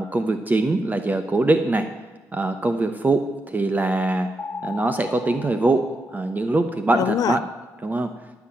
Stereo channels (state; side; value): normal; both; correlation 0.84